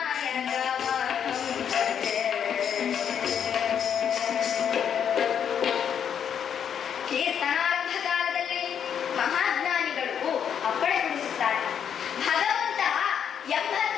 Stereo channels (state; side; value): quieter; right; 8.3 dB